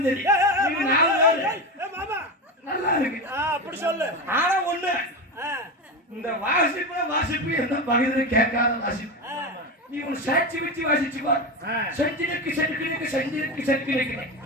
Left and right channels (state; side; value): normal; both; correlation 0.19